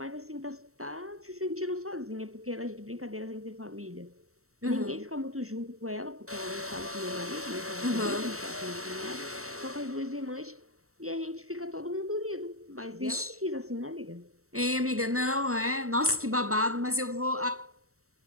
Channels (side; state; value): left; late; 0.64 ms